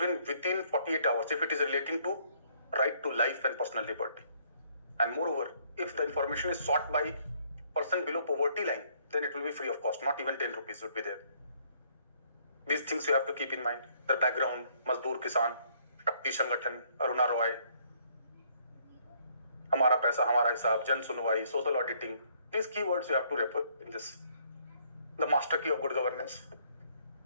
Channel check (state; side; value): inverted; both; correlation -0.66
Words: within 48 hours if it is relating to right to life and personal liberty. And moreover, if the information is sought by person below poverty line, then it will be free of cost, not even 10 rupees would be there. These things you have to keep in mind. The background, Mazdoor Kisan, Shakti Sangathan, Aruna Roy, Hamara Paisa, Hamara Hisab, Jan Sunwai, social auditing. These keywords you have to refer in this. The master key of good governance.